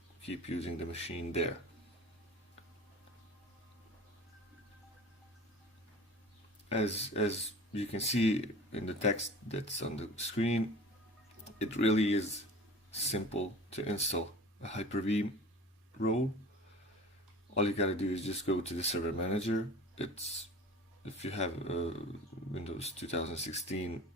keep using the machine there. As you can see in the text that's on the screen, it really is simple to install a Hyper-V role. All you gotta do is just go to the server manager. If you have Windows 2016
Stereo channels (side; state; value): both; normal; correlation 0.40